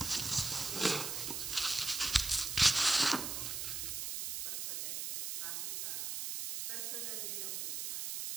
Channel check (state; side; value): noise; right; hiss, 3 dB below the sound